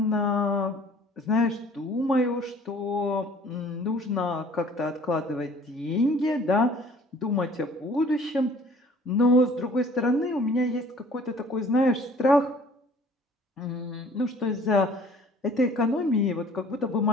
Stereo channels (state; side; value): normal; both; correlation 0.52